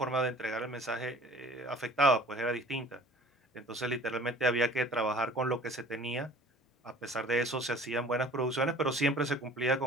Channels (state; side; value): normal; both; correlation 0.48